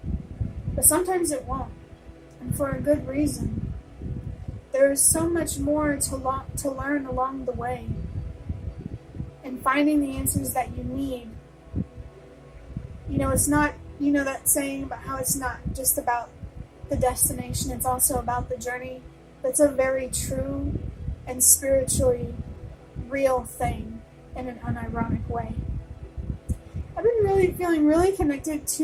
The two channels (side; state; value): both; identical; correlation 1.00